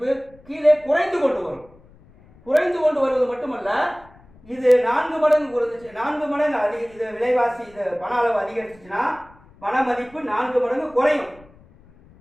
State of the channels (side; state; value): left; noise; rumble, 26 dB below the sound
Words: கீழே குறைந்து கொண்டு வரும். குறைந்து கொண்டு வருவது மட்டுமல்ல, இது 4 மடங்கு குறைஞ்சிச்சு, 4 மடங்கு இது விலைவாசி, இது பண அளவு அதிகரிச்சுச்சுன்னா பண மதிப்பு 4 மடங்கு குறையும்.